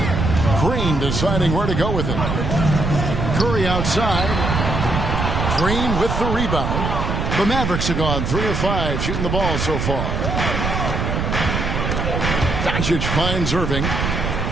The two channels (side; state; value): right; noise; rumble, 1 dB below the sound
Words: Green deciding where to go with it. Curry outside. Green with the rebound. The Mavericks have gone 3 of 5 shooting the ball so far. Doncic finds Irving.